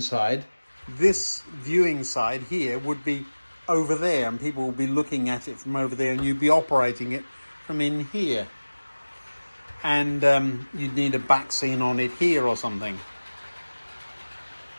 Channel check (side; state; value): both; inverted; correlation -1.00